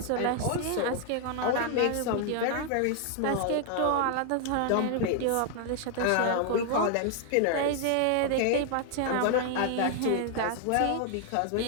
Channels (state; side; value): different; both; correlation 0.00